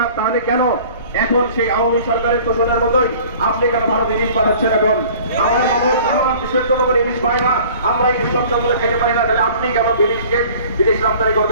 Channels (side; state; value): both; inverted; correlation -0.48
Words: তাহলে কেন এখন সেই আওয়ামী সরকারের তোষণের মতোই আপনি কেন ভারত ইলিশ পাঠাচ্ছেন? এখন আমার মানুষ, আমার দেশের জনগণ ইলিশ পায় না, আমরা ইলিশ সচ্ছলভাবে খেতে পারি না, তাহলে আপনি কেন ইলিশকে বিদেশ রপ্তানি